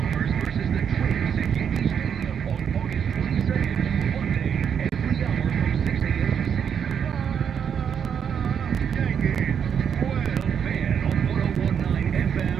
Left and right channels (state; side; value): quieter; left; 7.8 dB